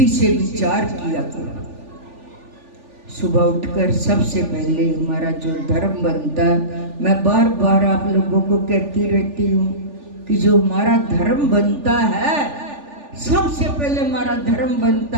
से विचार किया करो, सुबह उठकर सबसे पहले हमारा जो धर्म बनता है, मैं बार बार आप लोगों को कहती रहती हूँ कि जो हमारा धर्म बनता है, सबसे पहले हमारा धर्म बनता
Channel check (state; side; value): late; left; 3.4 ms